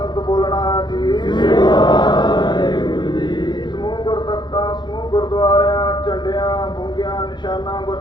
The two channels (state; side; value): late; right; 0.21 ms